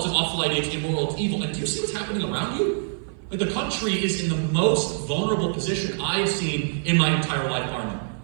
an awful idea, it's immoral, it's evil. And do you see what's happening around you? Like, the country is in the most vulnerable position I have seen in my entire life, Arnold.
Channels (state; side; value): silent; left; 55 dB below the other